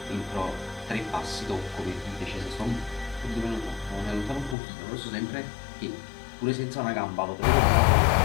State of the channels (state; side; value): drops out; right; at 4.5 s